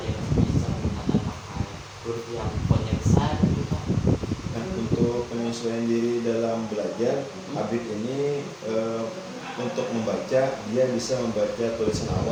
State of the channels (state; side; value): identical; both; correlation 1.00